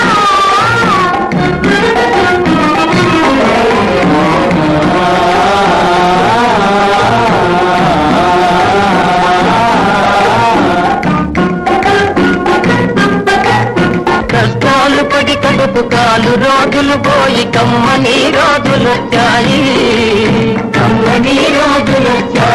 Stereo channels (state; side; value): identical; both; correlation 1.00